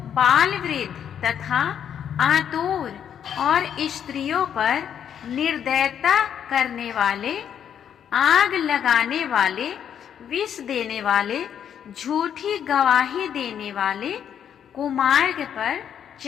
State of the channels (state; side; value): quieter; right; 8.8 dB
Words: बाल वृद्ध तथा आतुर और स्त्रियों पर निर्दयता करने वाले, आग लगाने वाले, विष देने वाले, झूठी गवाही देने वाले, कुमार्ग पर